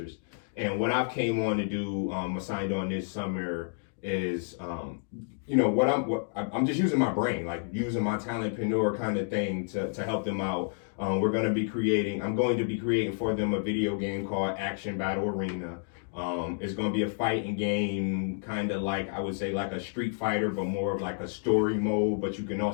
And what I've came on to do, assigned on this summer, is I'm just using my brain, using my talentpreneur kind of thing to help them out. I'm going to be creating for them a video game called Action Battle Arena. It's going to be a fighting game, kind of I would say a Street Fighter, but more of a story mode, but you can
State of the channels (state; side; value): silent; right; digital silence